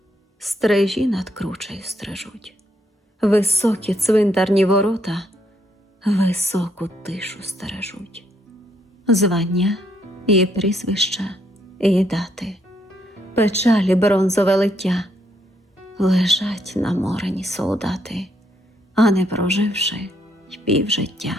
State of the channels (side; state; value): both; normal; correlation 0.73